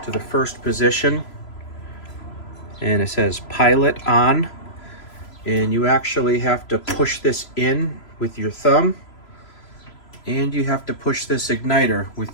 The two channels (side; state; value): right; late; 3.0 ms